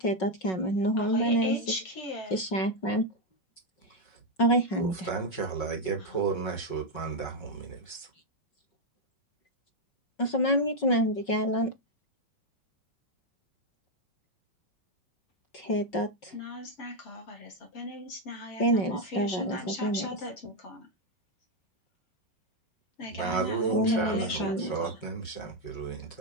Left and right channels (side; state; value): right; late; 5.4 ms